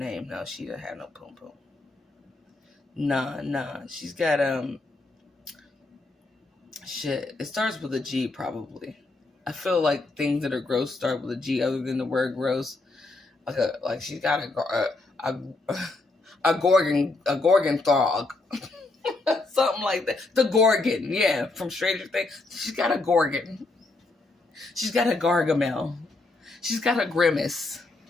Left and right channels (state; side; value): quieter; right; 3.2 dB